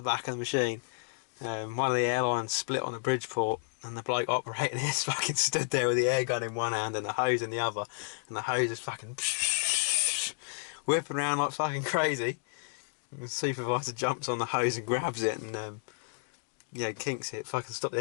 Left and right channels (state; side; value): silent; right; digital silence